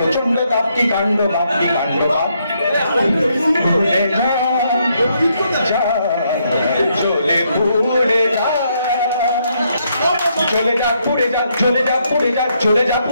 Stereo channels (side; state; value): both; inverted; correlation -0.75